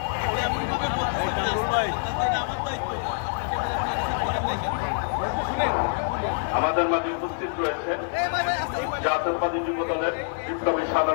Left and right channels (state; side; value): silent; right; digital silence